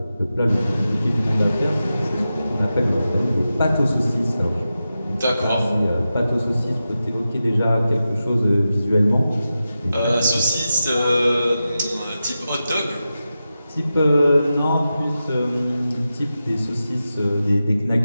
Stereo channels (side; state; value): both; inverted; correlation -0.92